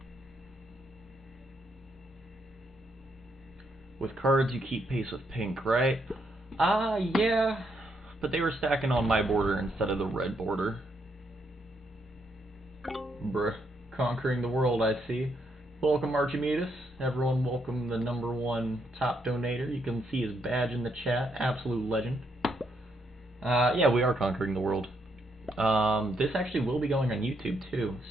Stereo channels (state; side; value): normal; both; correlation 0.76